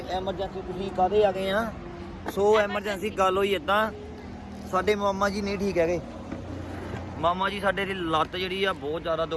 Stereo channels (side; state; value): both; identical; correlation 1.00